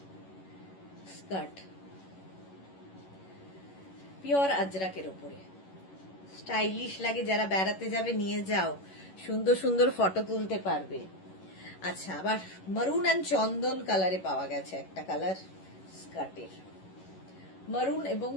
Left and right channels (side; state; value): right; late; 11 ms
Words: স্কার্ট, পিওর আজরাকের উপরে, স্টাইলিশ লাগে, যারা বেড়াতে যাবে নিয়ে যাও, সুন্দর সুন্দর ফটো তুলতে পারবে। আচ্ছা, আবার মারুন অ্যান্ড চন্দন কালারে পাওয়া গেছে একটা কালার স্কার্টের, মারুন এবং